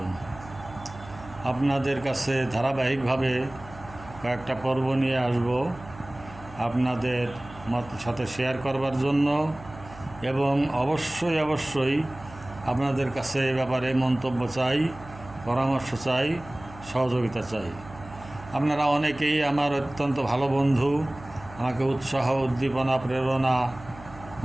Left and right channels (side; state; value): right; noise; hum, 18 dB below the sound